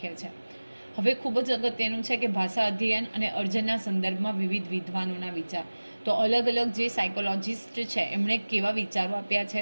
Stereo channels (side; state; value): both; inverted; correlation -1.00